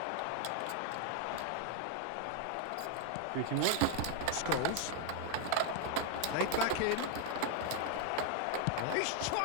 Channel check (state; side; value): different; both; correlation 0.00